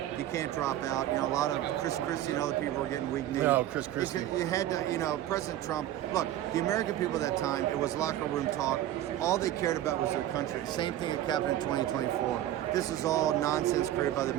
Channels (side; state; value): left; quieter; 12.9 dB